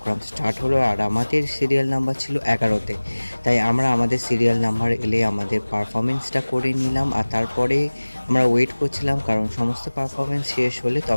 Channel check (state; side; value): inverted; both; correlation -1.00